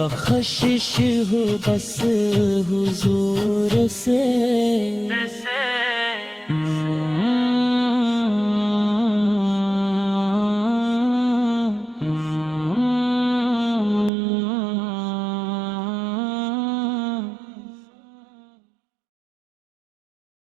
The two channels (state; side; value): drops out; left; at 14.1 s